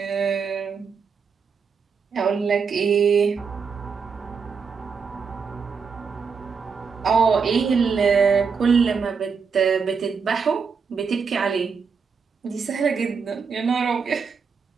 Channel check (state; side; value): quieter; left; 5.7 dB